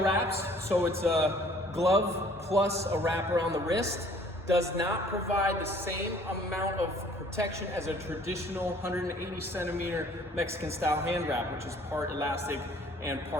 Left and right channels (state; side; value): normal; both; correlation 0.55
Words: so it's a glove plus a wrap around the wrist. Does not provide the same amount of protection as a traditional 180 centimeter Mexican style hand wrap, which is part elastic and